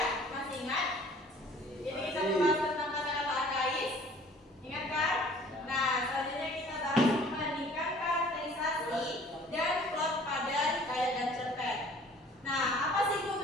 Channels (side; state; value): both; normal; correlation 0.52